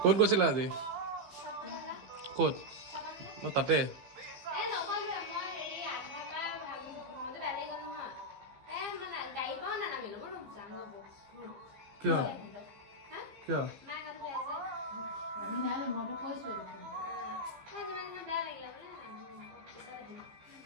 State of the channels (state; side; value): late; left; 15 ms